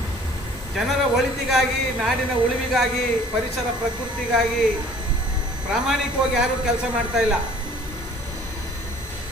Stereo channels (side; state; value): both; normal; correlation 0.52